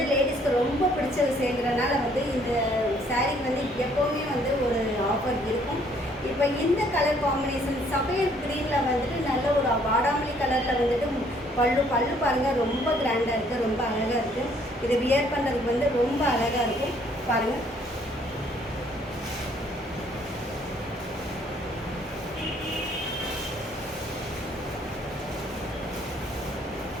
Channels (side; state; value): both; normal; correlation 0.63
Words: லேடிஸ்க்கு ரொம்ப பிடிச்ச விஷயங்கிறனால வந்து இந்த சாரீக்கு வந்து எப்போவுமே வந்து ஒரு ஆஃபர் இருக்கும். இப்போ இந்த கலர் காம்பினேஷன் சஃபேர் க்ரீனில் வந்துட்டு நல்ல ஒரு வாடாமல்லி கலரில் வந்துட்டு பல்லு பாருங்கள், ரொம்ப கிராண்டாக இருக்குது, ரொம்ப அழகாக இருக்குது. இதை வியர் பண்ணுறதுக்கு வந்து ரொம்ப அழகாக இருக்கும் பாருங்கள்.